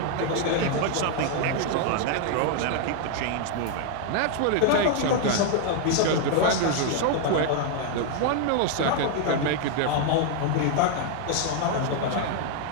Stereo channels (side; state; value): both; different; correlation 0.00